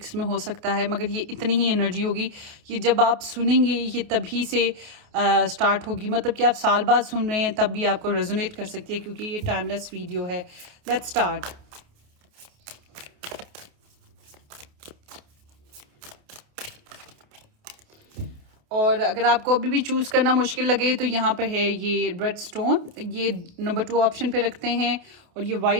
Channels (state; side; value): late; left; 28 ms